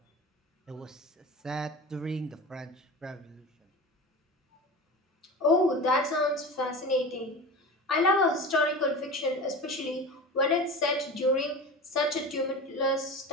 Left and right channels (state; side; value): normal; both; correlation 0.31